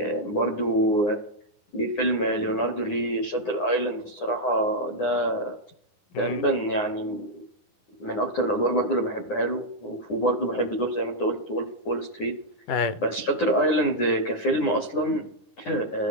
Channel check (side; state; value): right; late; 9.8 ms